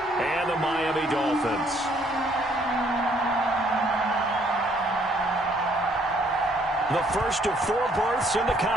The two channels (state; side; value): normal; both; correlation 0.65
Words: and the Miami Dolphins. The first of 4 berths in the